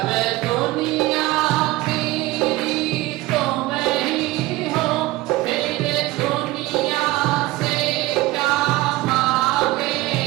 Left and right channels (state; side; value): quieter; left; 19.0 dB